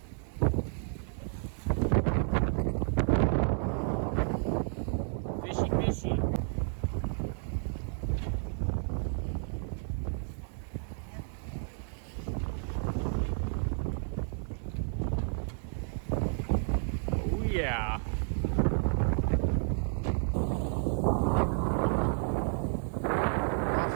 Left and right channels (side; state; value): left; silent; 57 dB below the other